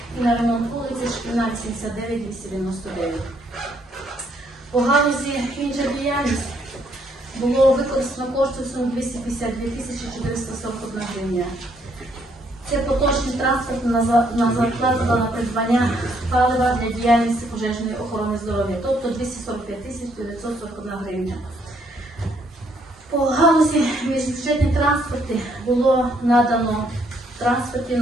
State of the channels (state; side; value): normal; both; correlation 0.69